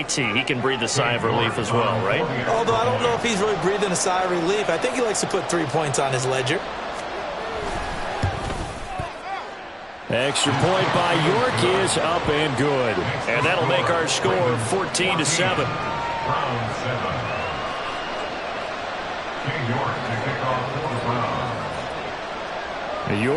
He can breathe a sigh of relief as well, right? Although I don't know if he's really breathing a sigh of relief. I think he likes to put 3 points on his ledger. Extra point by York is up and good. And that'll make our score 14-7. Browns 7. York to kick off for the Browns.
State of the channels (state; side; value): identical; both; correlation 1.00